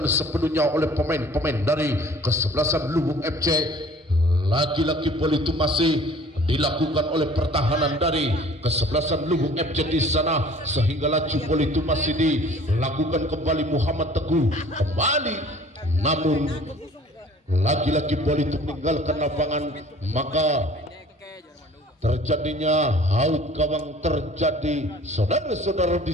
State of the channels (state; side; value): normal; both; correlation 0.49